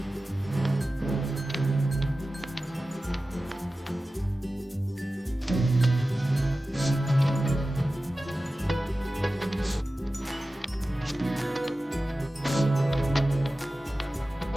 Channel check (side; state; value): both; normal; correlation 0.95